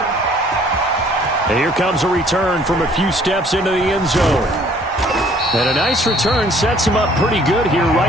And here comes a return from a few steps into the end zone. And a nice return sets him up pretty good here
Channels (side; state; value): both; normal; correlation 0.58